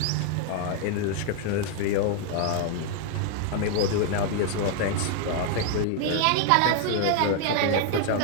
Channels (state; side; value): different; both; correlation 0.00